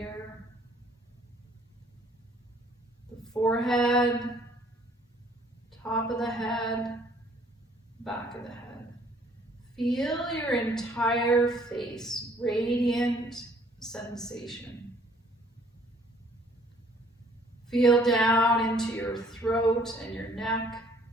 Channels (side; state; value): both; normal; correlation 0.60